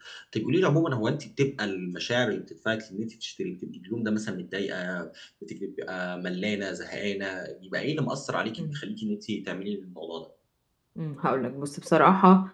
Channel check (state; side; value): identical; both; correlation 1.00